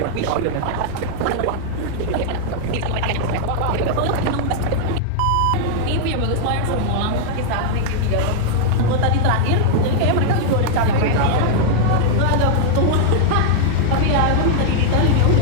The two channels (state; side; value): different; both; correlation -0.01